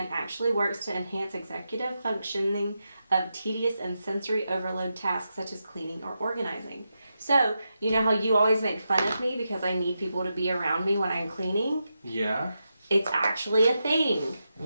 actually works to enhance executive functioning of tedious and sensory overload tasks such as cleaning or organizing. So, you know how you always make fun of me because I need people to be around me when I'm cleaning? Yeah. It's actually a thing.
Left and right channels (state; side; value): inverted; both; correlation -0.87